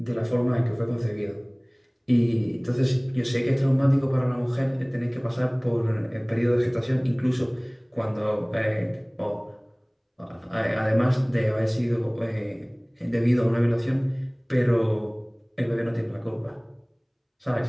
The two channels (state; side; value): identical; both; correlation 1.00